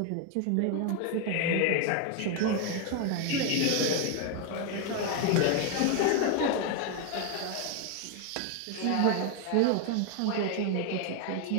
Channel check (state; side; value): different; both; correlation 0.01